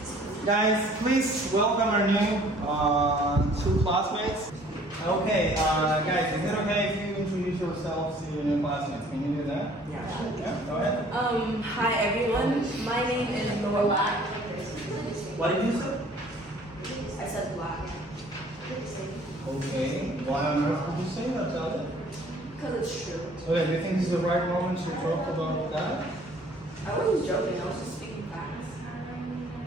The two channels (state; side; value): normal; both; correlation 0.55